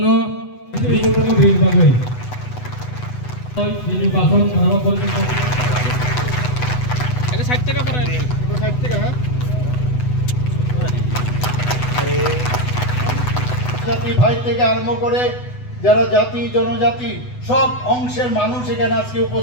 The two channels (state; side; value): late; right; 8.0 ms